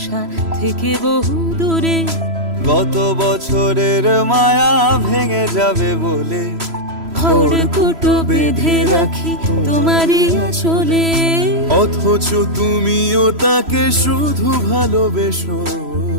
থেকে বহু দূরে, গত বছরের মায়া ভেঙে যাবে বলে। খড়কুটো বেঁধে রাখি তোমারই আঁচলে। অথচ তুমিও তাকে শুধু ভালোবেসো।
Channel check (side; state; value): left; late; 3.0 ms